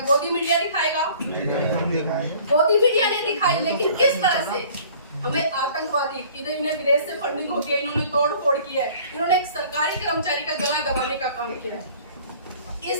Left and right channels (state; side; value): inverted; both; correlation -0.51